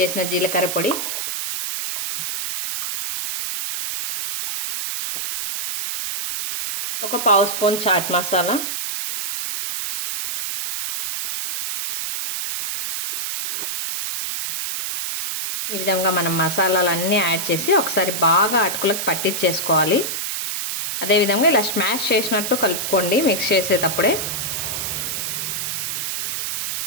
జీలకర్ర పొడి, 1/2 స్పూన్ చాట్ మసాలా, ఈ విధంగా మనం మసాలాలన్నీ యాడ్ చేసి ఒకసారి బాగా అటుకులకు పట్టించేసుకోవాలి. అదేవిధంగా ఇలా స్మాష్ చేసినట్టు కలుపుకోండి మిక్స్ చేసేటప్పుడే.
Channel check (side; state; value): right; noise; hiss, 3 dB below the sound